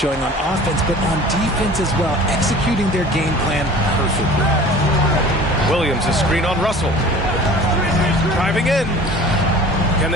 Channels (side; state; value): both; normal; correlation 0.44